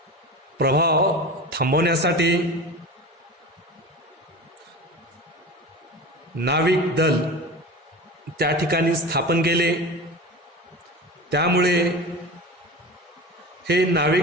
प्रभाव थांबवण्यासाठी नाविक दल त्या ठिकाणी स्थापन केले. त्यामुळे हे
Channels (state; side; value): normal; both; correlation 0.31